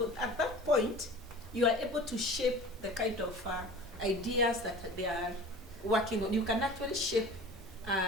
at that point, you are able to shape the kind of ideas that they are working on. You can actually shape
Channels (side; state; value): both; normal; correlation 0.39